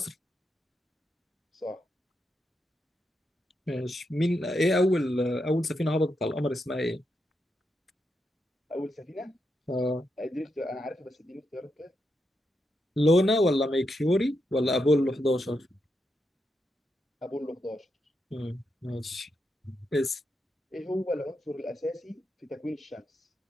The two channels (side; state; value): both; normal; correlation 0.84